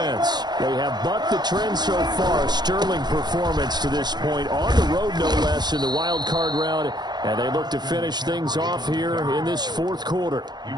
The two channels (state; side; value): late; left; 0.21 ms